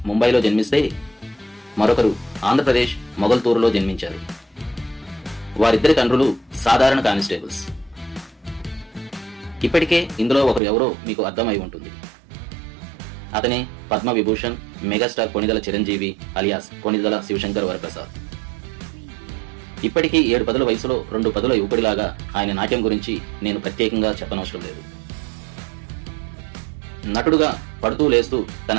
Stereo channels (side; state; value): left; drops out; at 10.6 s